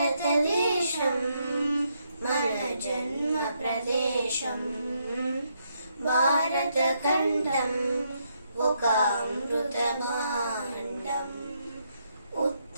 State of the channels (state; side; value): inverted; both; correlation -0.76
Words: మన జన్మ ప్రదేశం భారతఖండం ఒక అమృత భాండం